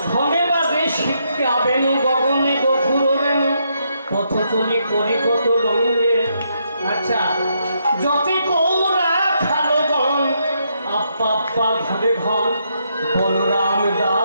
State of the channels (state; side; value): inverted; both; correlation -0.77